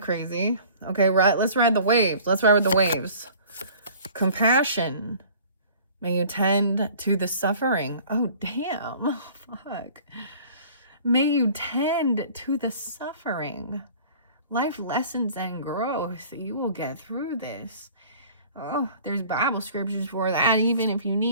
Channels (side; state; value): both; inverted; correlation -0.48